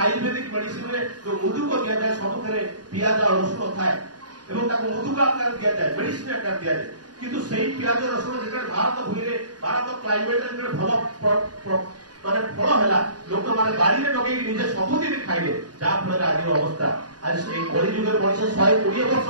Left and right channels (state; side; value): late; left; 0.69 ms